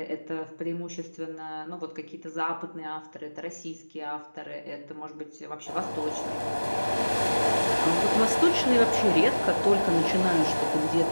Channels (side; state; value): both; inverted; correlation -1.00